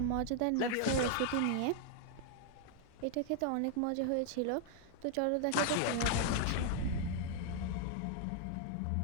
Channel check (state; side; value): different; both; correlation 0.00